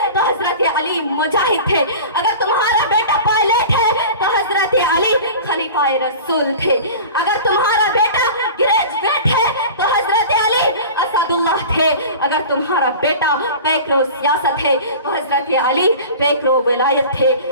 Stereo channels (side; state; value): both; inverted; correlation -0.37